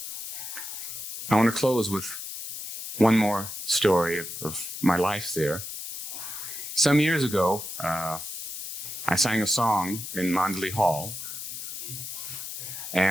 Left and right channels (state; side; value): noise; left; hiss, 7 dB below the sound